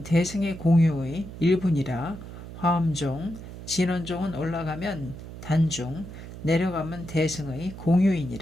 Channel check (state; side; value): noise; right; hum, 12 dB below the sound